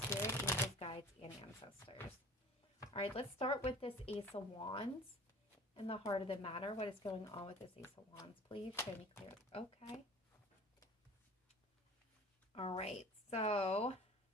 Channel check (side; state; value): both; normal; correlation 0.43